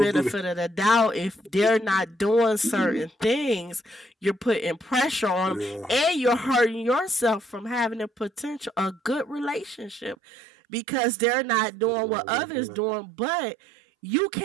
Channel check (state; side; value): drops out; left; at 10.2 s